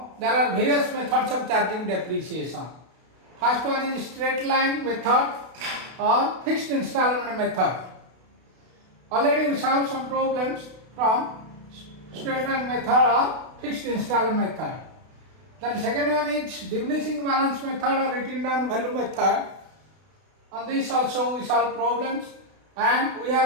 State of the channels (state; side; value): late; left; 32 ms